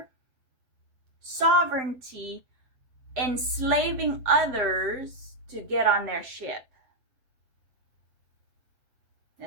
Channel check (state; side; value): late; left; 7.7 ms